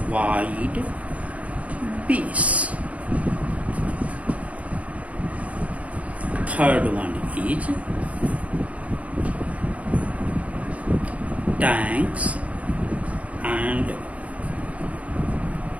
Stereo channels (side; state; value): left; late; 0.067 ms